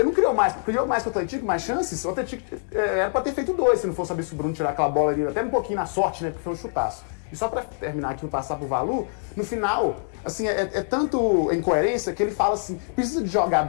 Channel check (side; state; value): right; silent; digital silence